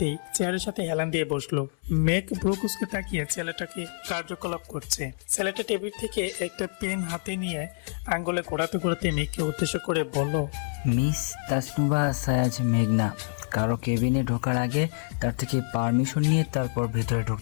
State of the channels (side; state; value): right; silent; 60 dB below the other